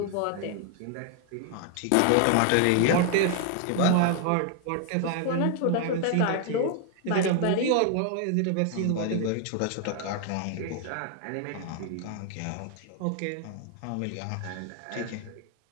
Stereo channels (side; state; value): both; different; correlation 0.00